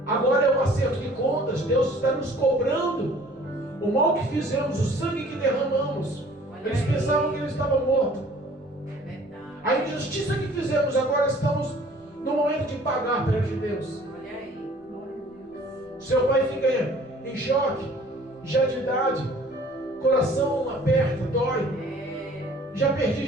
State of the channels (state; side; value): normal; both; correlation 0.52